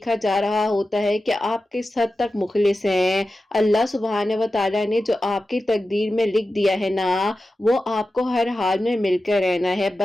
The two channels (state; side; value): normal; both; correlation 0.93